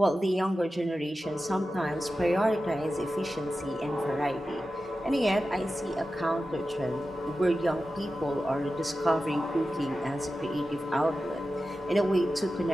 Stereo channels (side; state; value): both; normal; correlation 0.93